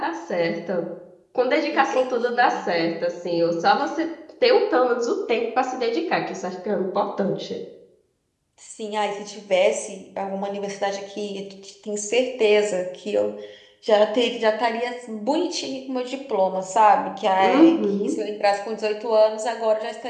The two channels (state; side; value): identical; both; correlation 1.00